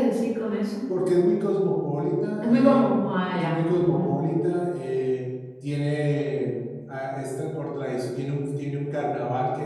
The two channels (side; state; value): both; identical; correlation 1.00